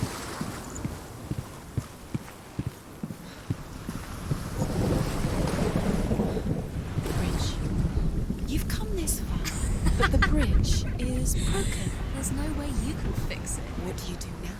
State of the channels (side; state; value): both; identical; correlation 1.00